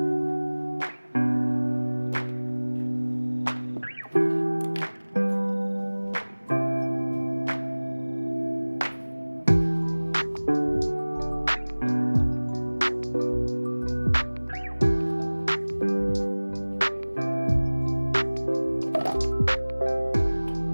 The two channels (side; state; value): both; inverted; correlation -1.00